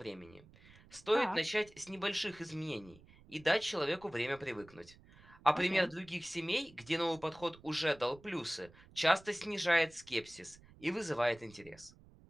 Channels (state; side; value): noise; right; rumble, 24 dB below the sound